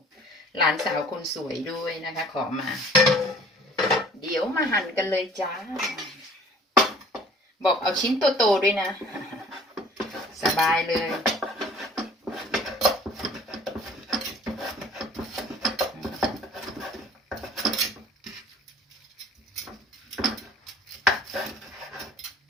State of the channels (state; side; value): normal; both; correlation 0.51